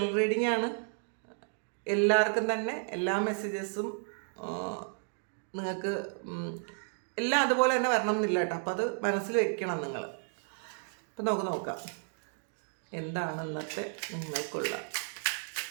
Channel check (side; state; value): left; silent; 56 dB below the other